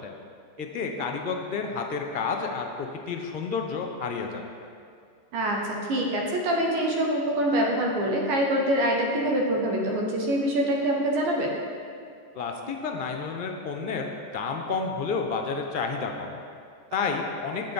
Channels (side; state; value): left; late; 14 ms